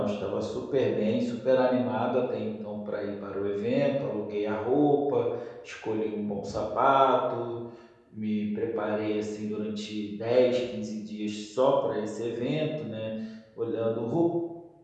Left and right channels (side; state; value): both; identical; correlation 1.00